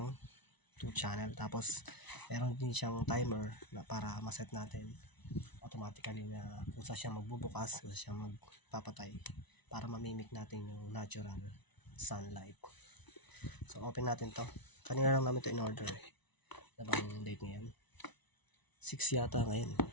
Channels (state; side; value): late; right; 1.0 ms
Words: 2 channel, tapos meron din siyang timer na para maset natin automatically na kung saan siya magbubukas, kung saan siya magpapatay para mamimik natin yung natural sunlight. So open natin to. Kanina lang namin to in order na bang date ngayon? 6 yata ngayon.